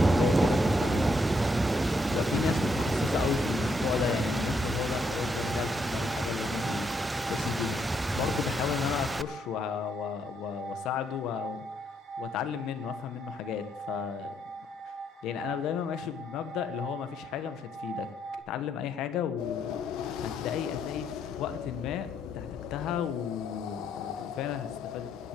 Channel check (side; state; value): both; normal; correlation 0.75